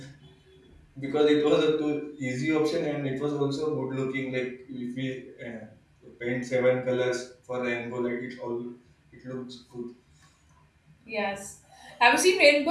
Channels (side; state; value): both; identical; correlation 1.00